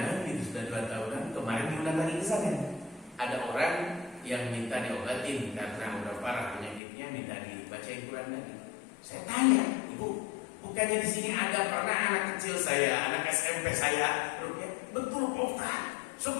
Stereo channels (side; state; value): right; drops out; at 6.8 s